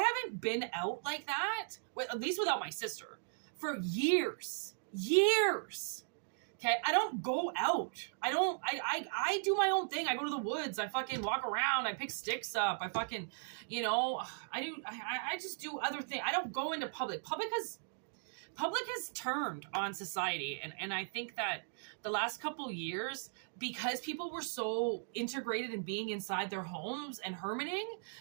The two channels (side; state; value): left; silent; digital silence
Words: been out like that, at least without my sister, for years. Years. Okay? I don't go out. I do my own thing. I go to the woods. I fucking walk around. I pick sticks up. I fucking, you know, I just do other things. I don't go into public. Public has turned on society. And I think that the last couple years, because people were so integrated in being inside their homes and hermiting,